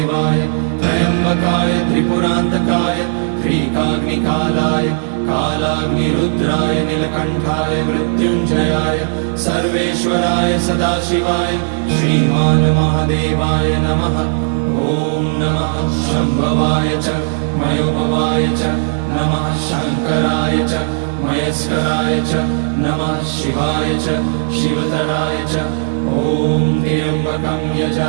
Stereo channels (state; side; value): silent; left; 69 dB below the other